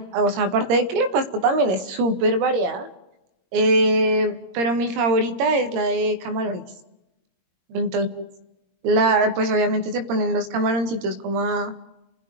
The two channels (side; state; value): left; late; 21 ms